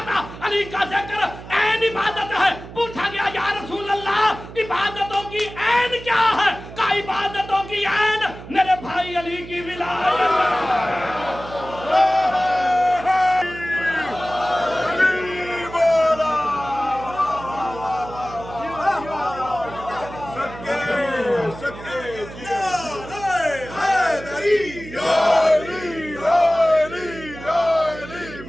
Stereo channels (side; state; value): right; noise; hum, 14 dB below the sound